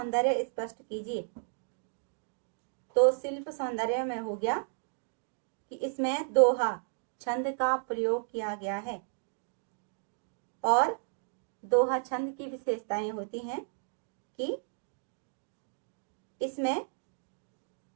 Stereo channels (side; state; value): left; silent; digital silence